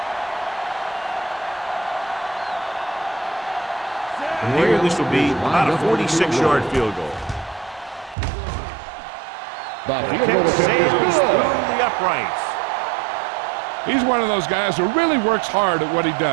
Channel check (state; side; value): drops out; left; at 8.2 s